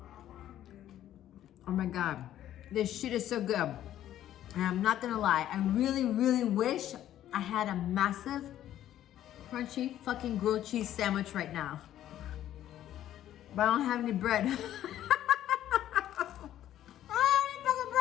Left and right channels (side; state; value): right; quieter; 12.1 dB